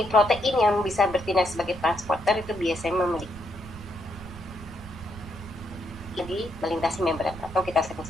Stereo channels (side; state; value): right; noise; rumble, 15 dB below the sound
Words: protein yang bisa bertindak sebagai transporter itu biasanya memiliki melintasi membran atau kita